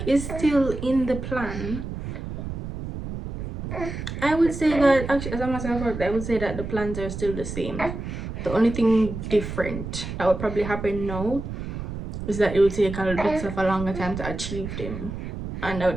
is still in the plan. I would say that actually, as a matter of fact, I would say that the plans are still the same. The only thing different that would probably happen now is that it will take a little bit of a longer time to achieve them, and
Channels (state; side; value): noise; right; rumble, 7 dB below the sound